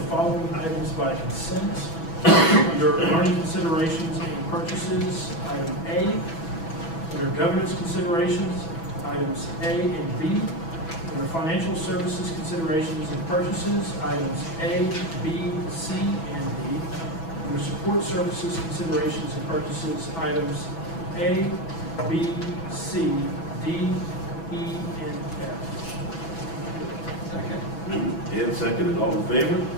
following items by consent. Under learning considerations and purchases, item A. Under governance considerations, items A and B. Under financial services considerations and purchases, items A, B, C, and D. Under support services considerations and purchases, items A, B, C, D, E, and F. Second. And seconded. All in favor?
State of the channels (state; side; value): late; right; 6.1 ms